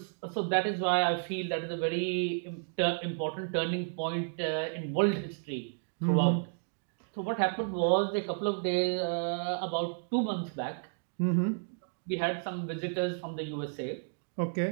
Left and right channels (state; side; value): silent; left; digital silence